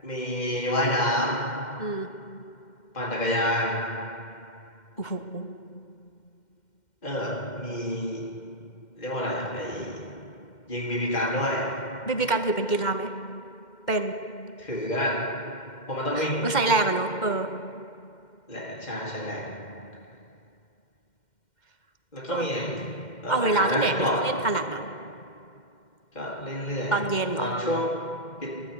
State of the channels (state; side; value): late; right; 2.1 ms